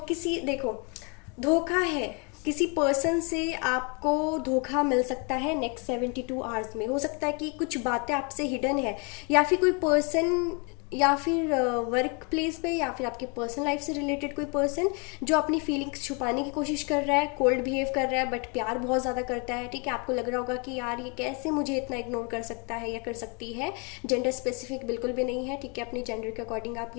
किसी, देखो, धोखा है, किसी पर्सन से आपको धोखा मिल सकता है नेक्स्ट 72 आवर्स में। हो सकता है कि कुछ बातें आपसे हिडन है, या फिर कोई पर्सन, या फिर वर्क प्लेस पे, या फिर आपके पर्सनल लाइफ से रिलेटेड कोई पर्सन जो अपनी फीलिंग्स छुपाने की कोशिश कर रहा है, कोल्ड बिहेव कर रहा है, बट प्यार बहुत ज़्यादा करता है, ठीक है। आपको लग रहा होगा कि यार ये कैसे मुझे इतना इग्नोर कर सकता है या कर सकती है। जेंडर स्पेसिफिक बिल्कुल भी नहीं है, ठीक है। अपनी जेंडर के अकॉर्डिंग आप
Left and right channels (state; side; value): quieter; right; 33.9 dB